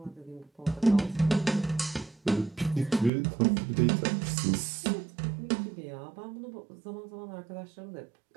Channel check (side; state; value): left; drops out; at 3.1 s